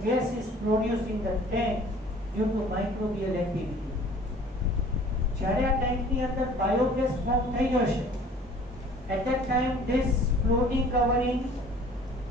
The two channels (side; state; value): both; normal; correlation 0.50